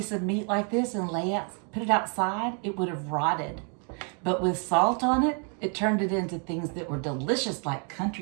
of meat like this and put it outside, it would have rotted. But with salt on it, it turned it into things that were delicious like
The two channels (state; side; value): quieter; left; 39.4 dB